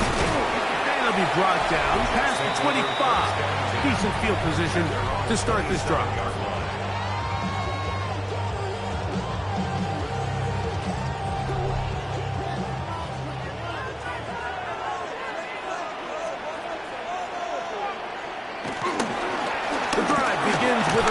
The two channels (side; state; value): both; identical; correlation 1.00